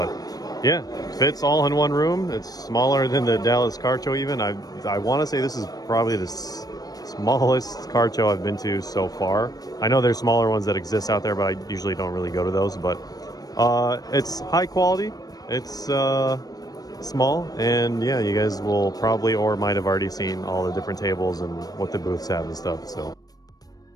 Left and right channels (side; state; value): right; late; 0.18 ms